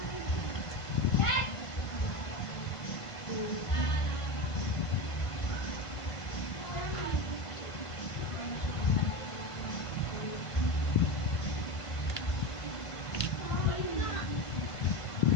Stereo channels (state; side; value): late; right; 1.5 ms